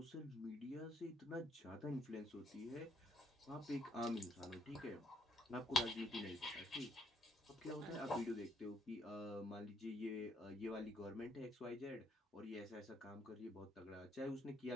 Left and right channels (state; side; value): normal; both; correlation 0.71